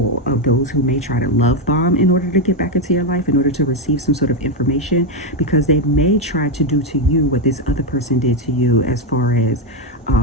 of those who may try to love bomb in order to get back into your life, in order to receive some sort of information, because they may try to do to you what this other person did to you, as far as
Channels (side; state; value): both; normal; correlation 0.05